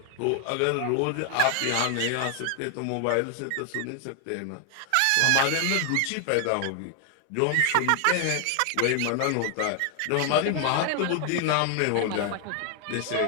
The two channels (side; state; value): both; different; correlation 0.00